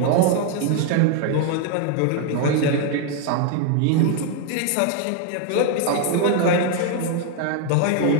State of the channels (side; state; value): both; different; correlation 0.01